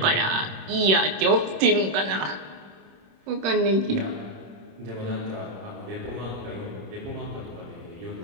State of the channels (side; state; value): left; late; 26 ms